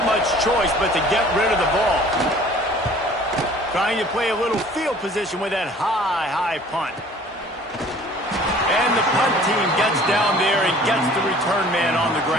much choice but to get rid of the ball. Trying to play a little field position with that high punt. And the punt team gets down there and gets the return man on the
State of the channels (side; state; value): both; normal; correlation 0.50